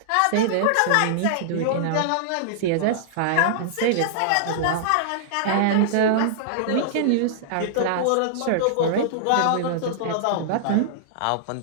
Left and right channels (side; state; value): both; different; correlation -0.01